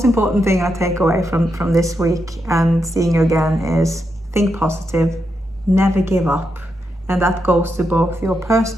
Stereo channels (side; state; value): both; normal; correlation 0.84